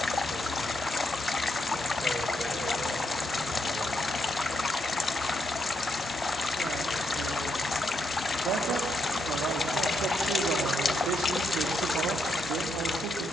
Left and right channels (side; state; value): both; normal; correlation 0.79